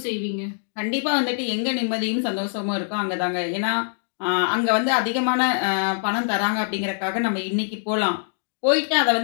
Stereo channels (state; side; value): silent; right; digital silence